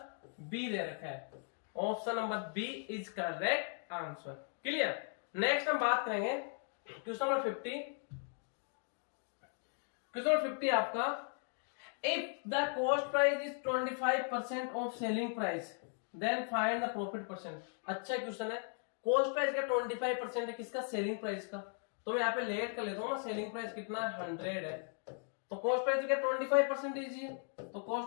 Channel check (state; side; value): silent; right; 53 dB below the other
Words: बी दे रखा है। Option number B is correct answer. Clear. Next हम बात करेंगे क्वेश्चन नंबर 50। क्वेश्चन नंबर 50 आपका, if the cost price is 25% of selling price then find the profit percent. अच्छा क्वेश्चन है। कॉस्ट प्राइस का 25% है, किसका? सेलिंग प्राइस का। तो मैं यहाँ पे लेट कर लेता हूँ ना, सेलिंग प्राइस कितना है? 100 है, तो कॉस्ट प्राइस का 25% ही है, तो